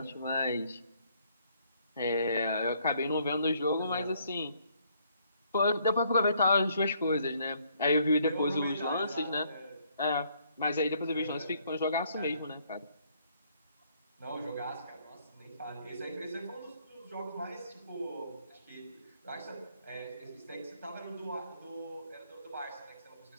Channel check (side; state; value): both; inverted; correlation -0.67